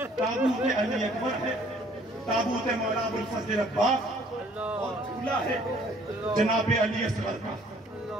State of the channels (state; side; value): normal; both; correlation 0.58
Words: ताबूत अली अकबर है, ताबूत मौला अबुल फजल अब्बास, और झूला है जनाब अली असगर का।